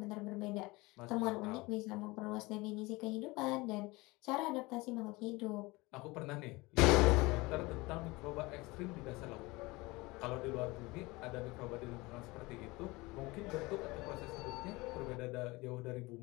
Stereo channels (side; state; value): right; quieter; 22.9 dB